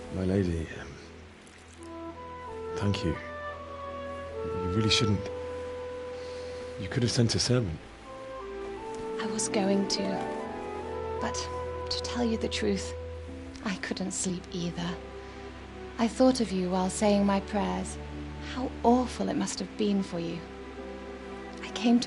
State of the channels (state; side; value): identical; both; correlation 1.00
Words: My lady, thank you. You really shouldn't. You could have sent a servant. I was going to, but to tell you the truth, I couldn't sleep either. I thought of you while saying my prayers. How awful it must have been for you. I came